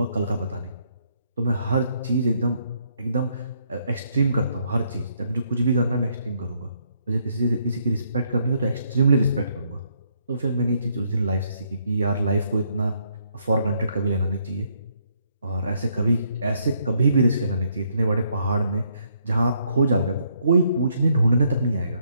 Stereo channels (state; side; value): inverted; both; correlation -0.72